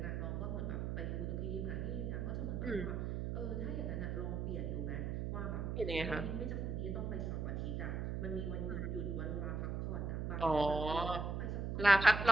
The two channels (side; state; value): right; noise; hum, 1 dB below the sound